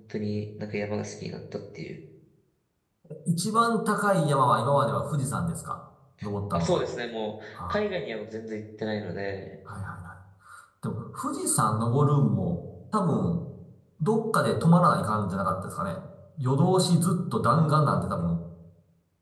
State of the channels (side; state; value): both; identical; correlation 1.00